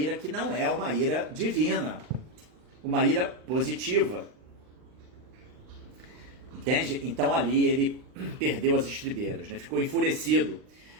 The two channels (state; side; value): late; left; 39 ms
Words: que não é uma ira divina, uma ira positiva. Entende? Então ali ele perdeu as estribeiras, né? Ficou enfurecido.